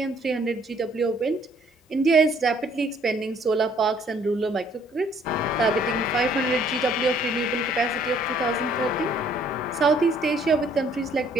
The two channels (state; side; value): normal; both; correlation 0.62